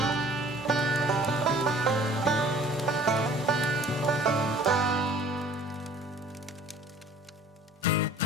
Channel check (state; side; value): normal; both; correlation 0.51